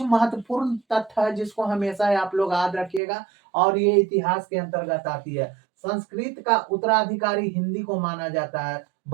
महत्वपूर्ण तथ्य है जिसको हमेशा आप लोग याद रखिएगा और ये इतिहास के अंतर्गत आती है। संस्कृत का उत्तराधिकारी हिंदी को माना जाता है।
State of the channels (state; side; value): drops out; left; at 3.0 s